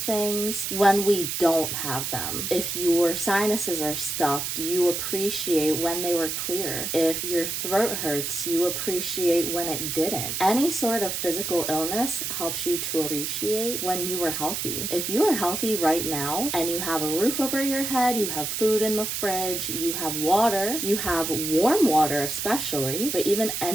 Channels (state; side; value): noise; right; hiss, 3 dB below the sound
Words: when we don't have them. If your sinuses are stuffed, you appreciate when they were clear. If your throat hurts, you appreciate when it didn't. Any sort of physical illness helps you to appreciate when you were healthy. If you are healthy right now and you have a roof over your head, you have food in the fridge, you have water, you have warm water especially, but even